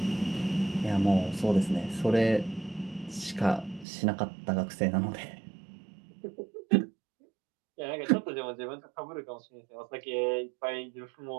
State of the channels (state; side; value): drops out; left; at 3.9 s